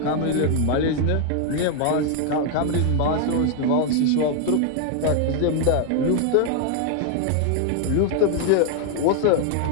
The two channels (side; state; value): both; different; correlation 0.00